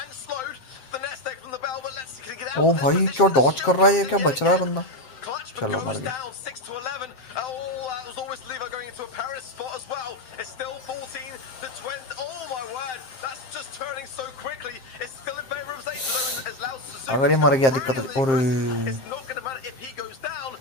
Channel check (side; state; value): right; late; 7.6 ms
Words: ओ भाई क्या Dodge कर रहा है ये क्या बच रहा है बंदा चलो मर गया अगर ये मर गया दिक्कत और